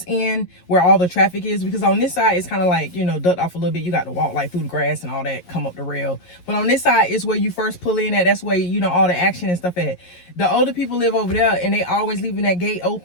end where all the traffic is, because on this side it's kind of like, you know, ducked off a little bit. You got to walk like through the grass and all that, come up the rail. But on this side is where you first pull in at. That's where, you know, all the action and stuff at. The older people live over there, and they always leaving that gate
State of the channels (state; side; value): late; right; 11 ms